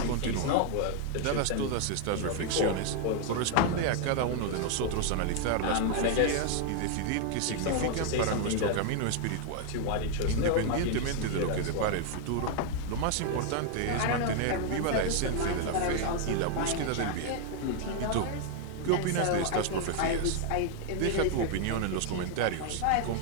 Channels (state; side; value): different; both; correlation 0.00